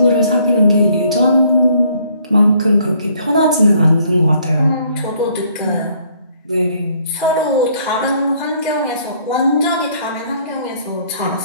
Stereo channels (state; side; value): inverted; both; correlation -0.64